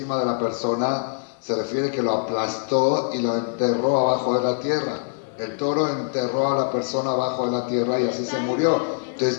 de la persona, se refiere que lo aplastó y lo enterró abajo de la tierra. El toro enterró a la persona abajo de la tierra y así se murió. Entonces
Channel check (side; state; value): right; silent; digital silence